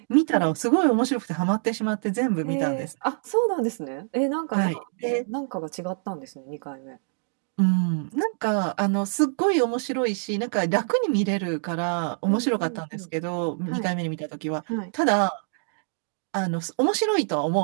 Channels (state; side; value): silent; left; digital silence